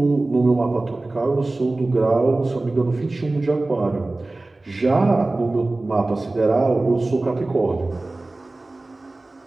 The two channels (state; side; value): quieter; left; 3.0 dB